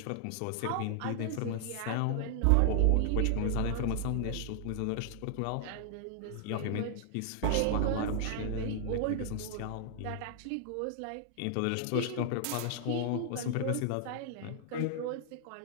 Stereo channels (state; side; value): different; both; correlation -0.01